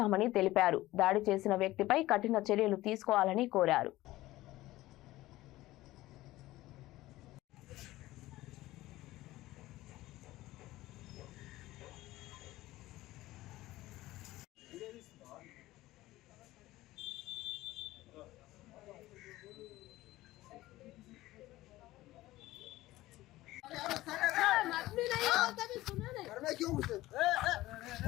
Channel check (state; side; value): quieter; right; 17.1 dB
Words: తెలిపారు. దాడి చేసిన వ్యక్తిపై కఠిన చర్యలు తీసుకోవాలని కోరారు.